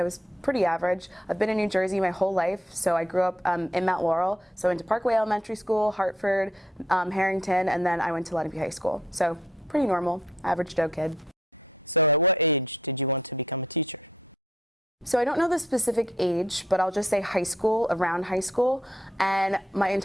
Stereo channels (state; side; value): normal; both; correlation 0.68